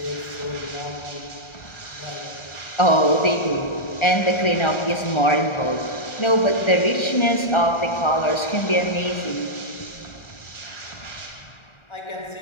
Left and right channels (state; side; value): late; right; 1.4 ms